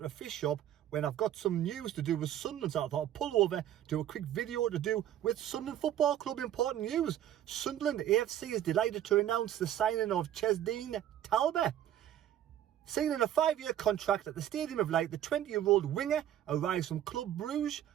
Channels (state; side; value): quieter; left; 11.3 dB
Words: a fish shop when I've got some news to do with Sunderland. So I thought I'd pull over, do a quick video to do with Sunderland Football Club. Important news. Sunderland AFC is delighted to announce the signing of Chemsdine Talbi. Signing a 5-year contract at the Stadium of Light, the 20-year-old winger arrives from Club Bruges